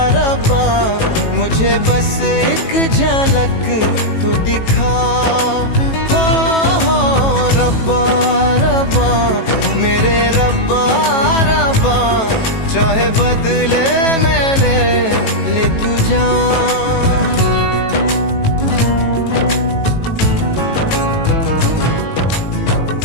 रब्बा, मुझे बस एक झलक तो दिखा। हो रब्बा रब्बा मेरे रब्बा रब्बा, चाहे बदले में ले तू जान।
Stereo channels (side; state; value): right; late; 18 ms